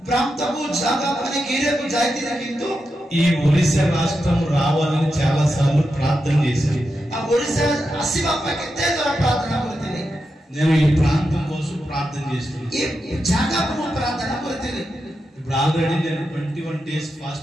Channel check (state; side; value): normal; both; correlation 0.88